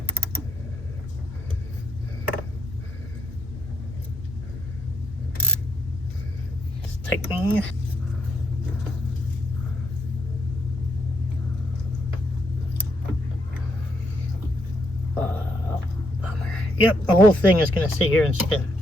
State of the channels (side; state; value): both; normal; correlation 0.75